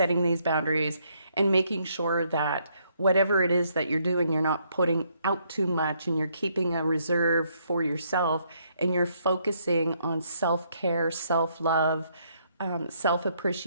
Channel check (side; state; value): both; inverted; correlation -0.72